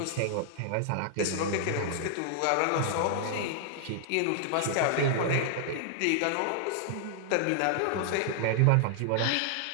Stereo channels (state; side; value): different; both; correlation -0.01